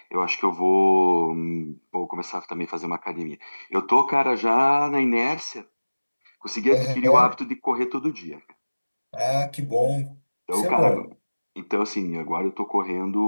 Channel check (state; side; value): inverted; both; correlation -1.00